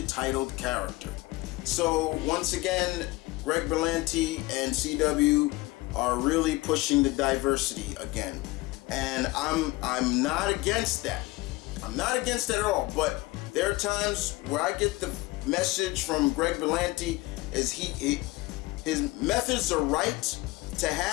titled character. So once again, Greg Berlanti and CW are really pushing the diversity again. And I'm not against that. I'm not against that at all. But there are times where I get the message from Greg Berlanti is his methods are right to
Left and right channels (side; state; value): right; quieter; 20.9 dB